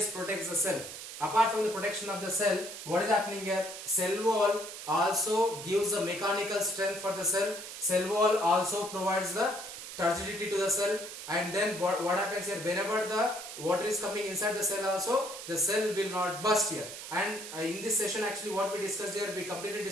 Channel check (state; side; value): noise; right; hiss, 10 dB below the sound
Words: protects the cell. Apart from the protection of the cell, what is happening here? Cell wall also gives the mechanical strength for the cell. Cell wall also provides the turgidity to the cell. And then what happens here? Whenever the water is coming inside the cell also, the cell will not burst here. And in this session actually what we discussed here, we completely